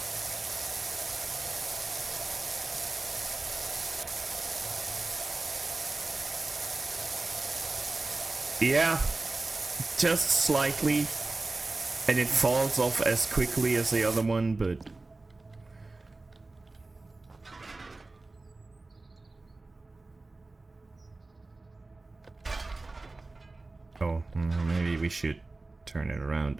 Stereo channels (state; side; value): quieter; left; 3.3 dB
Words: Yeah, just slightly. And it falls off as quickly as the other one, but... Oh, maybe we should turn it around.